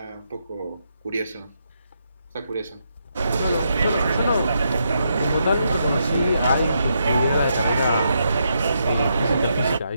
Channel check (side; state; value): both; inverted; correlation -0.80